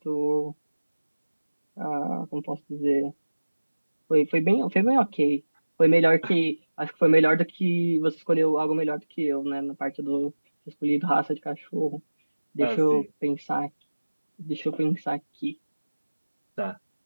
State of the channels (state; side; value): inverted; both; correlation -1.00